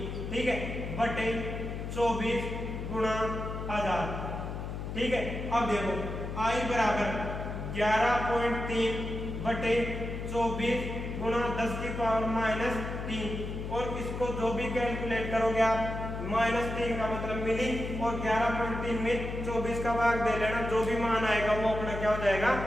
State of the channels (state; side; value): noise; left; hum, 6 dB below the sound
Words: ठीक है, बटे 24 गुणा 1000, ठीक है। अब देखो आई बराबर 11.3 बटे 24 गुणा 10 की पावर माइनस 3, और इसको जो भी कैलकुलेट करोगे आप -3 का मतलब मिली, और 11.3 में 24 का भाग दे लेना, जो भी मान आएगा वो अपना क्या हो जाएगा,